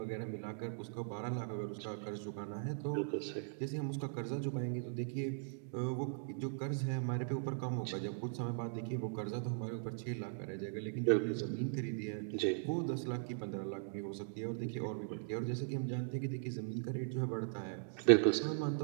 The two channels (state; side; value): silent; left; digital silence